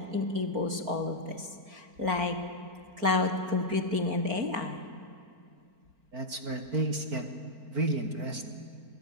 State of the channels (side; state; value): left; late; 4.4 ms